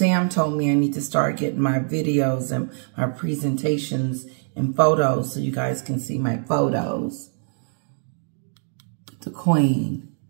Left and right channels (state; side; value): silent; left; 57 dB below the other